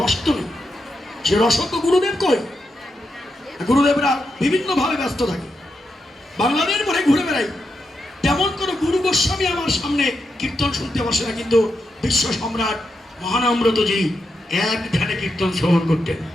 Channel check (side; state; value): both; normal; correlation 0.85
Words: তো নেই। সে রস তো গুরুদেব কই? গুরুদেবরা বিভিন্নভাবে ব্যস্ত থাকে, বাংলাদেশ ভরে ঘুরে বেড়াই। তেমন কোনো গুরু গোস্বামী আমার সামনে কীর্তন শুনতে বসে না, কিন্তু বিশ্ব সম্রাট মহানম্রতজি এক ধ্যানে কীর্তন শ্রবণ করতেন